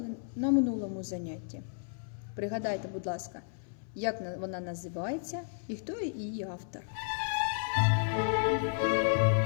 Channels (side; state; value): right; silent; 56 dB below the other